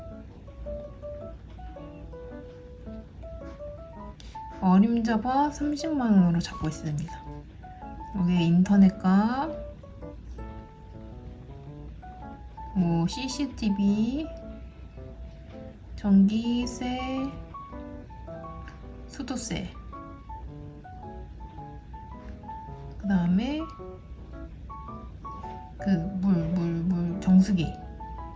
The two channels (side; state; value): both; identical; correlation 1.00